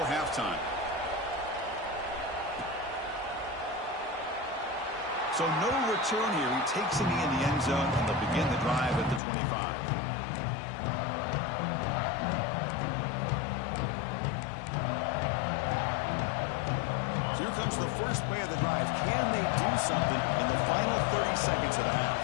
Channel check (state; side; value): drops out; right; at 9.2 s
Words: halftime. So no return here. He takes a knee in the end zone, and they'll begin the drive at the 25. Here comes the first play of the drive. Can they do something in the final 30 seconds of the half?